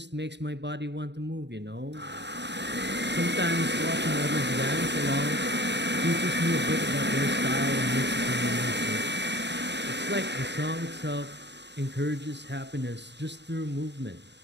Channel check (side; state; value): left; late; 0.51 ms